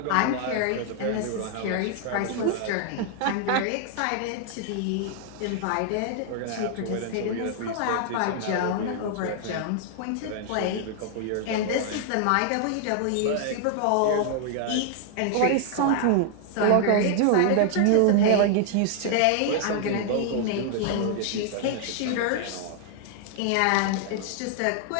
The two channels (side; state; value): both; different; correlation 0.00